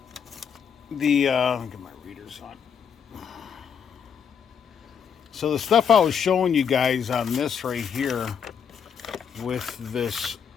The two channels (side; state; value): right; quieter; 7.3 dB